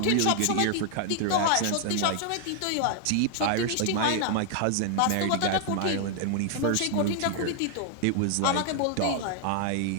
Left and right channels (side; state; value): both; different; correlation 0.00